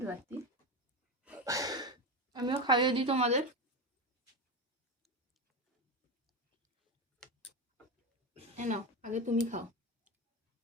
পারতি, আমিও খাইয়ে দিই তোমাদের। এ নাও, আগে তুমি খাও।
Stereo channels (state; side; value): normal; both; correlation 0.17